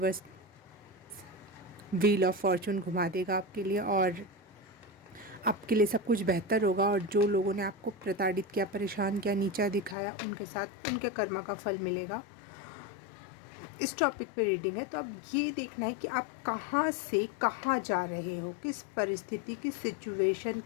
व्हील ऑफ फॉर्चून घुमा देगा आपके लिए, और आपके लिए सब कुछ बेहतर होगा। और जो लोगों ने आपको प्रताड़ित किया, परेशान किया, नीचा दिखाया, उनके साथ उनके कर्मा का फल मिलेगा। इस टॉपिक पे रीडिंग है, तो अब ये देखना है कि आप कहाँ से कहाँ जा रहे हो, किस परिस्थिति, किस सिचुएशन,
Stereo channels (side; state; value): right; drops out; at 10.0 s